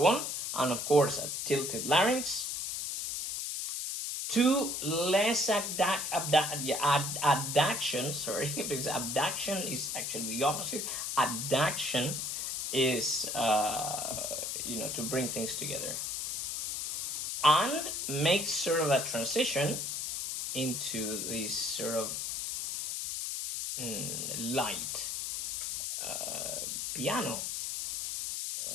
on, and of course a tilted larynx, to less adduction, sorry, because abduction is actually the opposite. Adduction is, you know, to bring things together, and make sort of a transition into this sort of light piano.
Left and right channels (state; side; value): noise; left; hiss, 2 dB below the sound